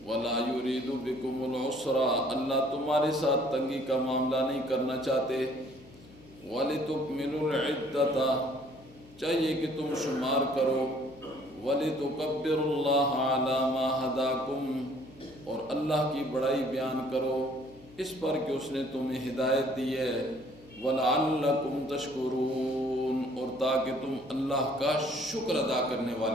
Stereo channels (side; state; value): left; noise; hum, 22 dB below the sound